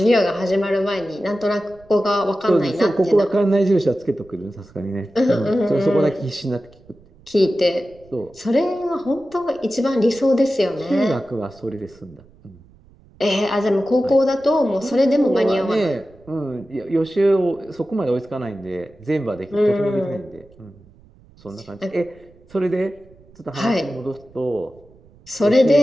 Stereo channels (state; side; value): noise; right; rumble, 27 dB below the sound